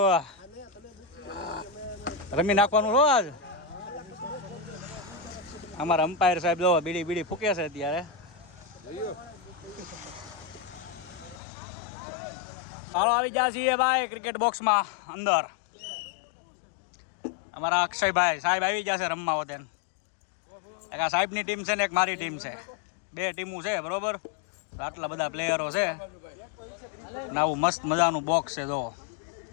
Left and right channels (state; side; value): drops out; right; at 11.4 s